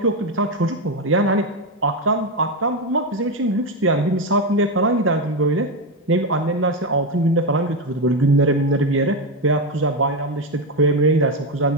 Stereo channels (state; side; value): normal; both; correlation 0.10